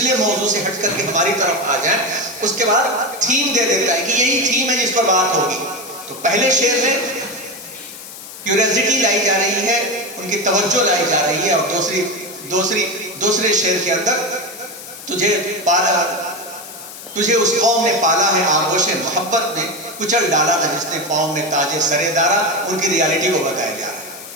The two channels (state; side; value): noise; left; hiss, 14 dB below the sound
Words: موضوع سے ہٹ کر کے ہماری طرف آ جائیں۔ اس کے بعد تھیم دے دیتا ہے کہ یہی تھیم ہے جس پر بات ہوگی۔ تو پہلے شعر میں کیوریاسٹی لائی جا رہی ہے ان کی توجہ لائی جا رہی ہے، اور دوسرے شعر کے اندر تجھے اس قوم نے پالا ہے آغوش محبت میں، کچل ڈالا تھا جس نے پاؤں میں تاج سرے دارا. ان کی ریالٹی کو بتایا جا رہا ہے.